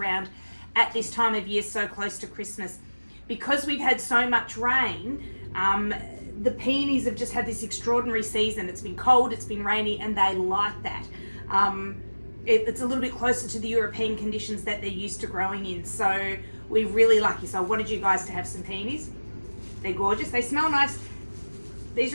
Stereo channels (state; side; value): inverted; both; correlation -1.00